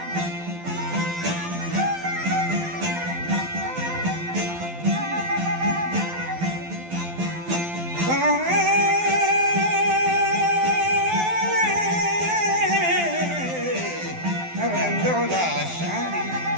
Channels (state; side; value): late; left; 12 ms